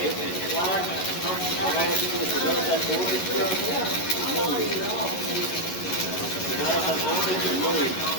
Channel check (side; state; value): right; late; 11 ms